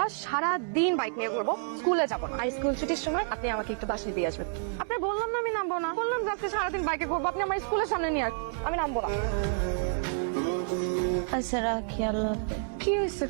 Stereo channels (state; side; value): silent; left; digital silence